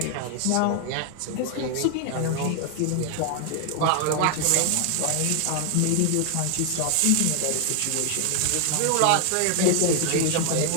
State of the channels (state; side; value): different; both; correlation 0.00